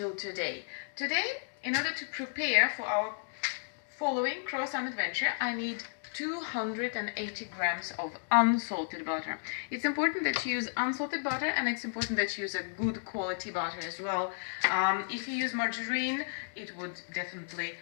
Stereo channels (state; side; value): silent; right; digital silence